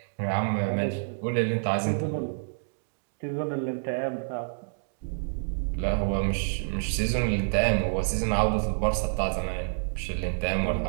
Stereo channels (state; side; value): silent; left; digital silence